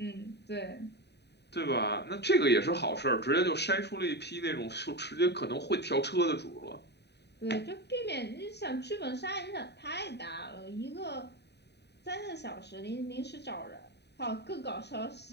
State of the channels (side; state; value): right; late; 0.49 ms